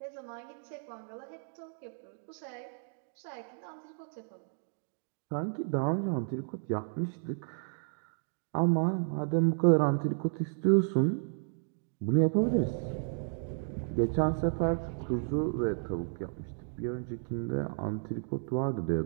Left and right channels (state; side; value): silent; left; digital silence